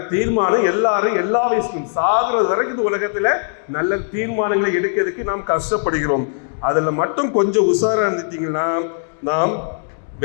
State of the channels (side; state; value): right; silent; 66 dB below the other